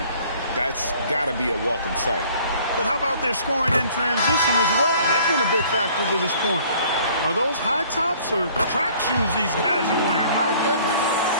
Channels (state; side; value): inverted; both; correlation -0.55